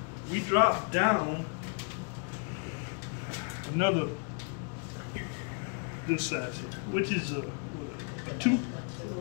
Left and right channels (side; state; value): right; quieter; 37.8 dB